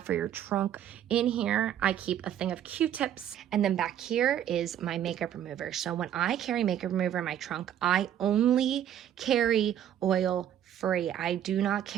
for your trunk. In here, I keep a thing of Q-tips, and then back here is my makeup remover. So when I carry makeup remover in my trunk, I only carry oil-free. I do not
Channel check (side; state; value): left; quieter; 10.5 dB